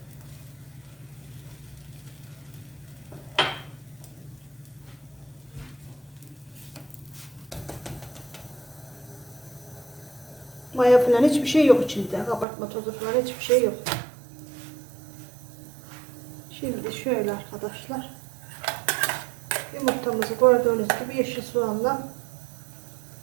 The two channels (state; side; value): drops out; left; at 12.5 s